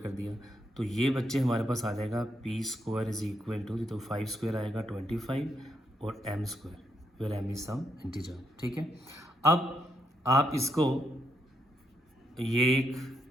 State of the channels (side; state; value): both; normal; correlation 0.79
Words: दिया, तो ये बच्चे हमारे पास आ जाएगा p square is equal to, तो 5 स्क्वायर आएगा 25 और m square, where m is some integer. ठीक है, अब आप इसको ये